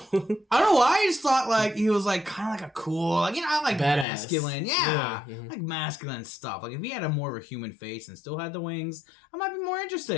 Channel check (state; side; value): drops out; right; at 4.0 s